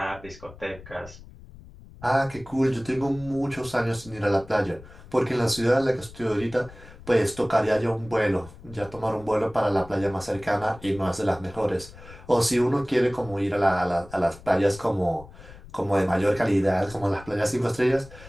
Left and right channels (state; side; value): noise; left; rumble, 19 dB below the sound